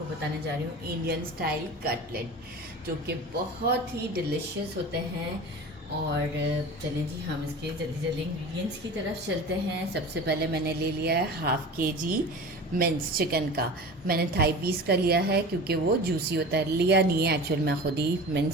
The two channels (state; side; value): normal; both; correlation 0.35